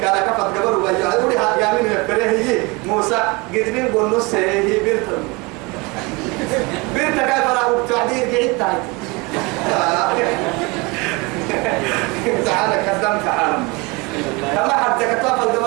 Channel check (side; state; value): left; quieter; 26.5 dB